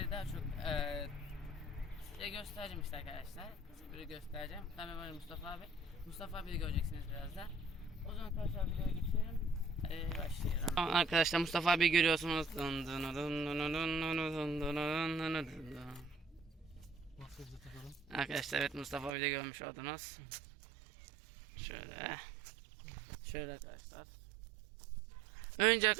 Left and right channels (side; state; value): left; drops out; at 19.2 s